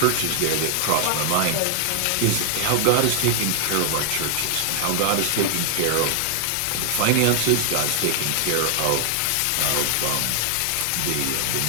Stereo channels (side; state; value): both; different; correlation 0.00